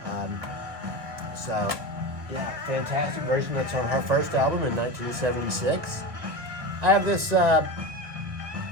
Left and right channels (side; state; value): left; late; 1.8 ms